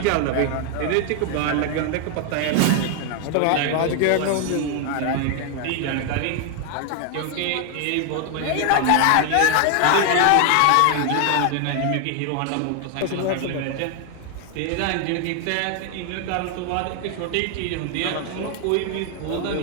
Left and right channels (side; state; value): both; different; correlation 0.01